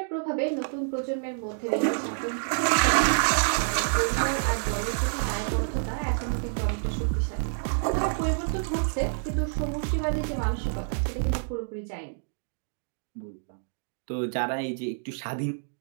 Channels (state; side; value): silent; left; digital silence